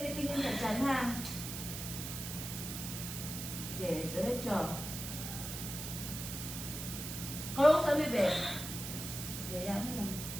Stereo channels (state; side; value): noise; right; hiss, 6 dB below the sound